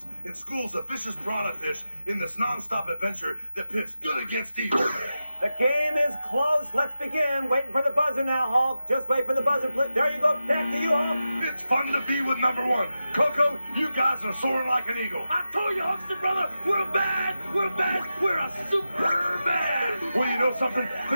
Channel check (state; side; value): inverted; both; correlation -0.90